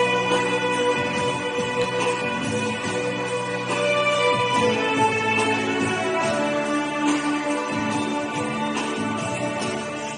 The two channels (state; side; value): identical; both; correlation 1.00